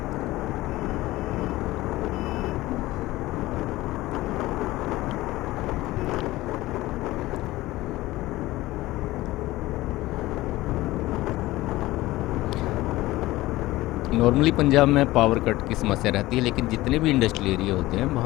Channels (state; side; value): quieter; right; 17.9 dB